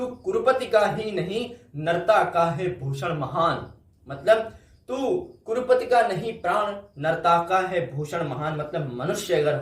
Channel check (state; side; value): identical; both; correlation 1.00